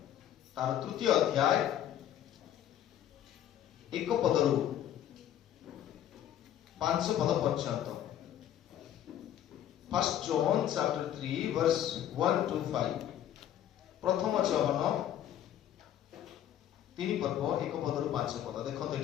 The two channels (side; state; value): right; quieter; 11.0 dB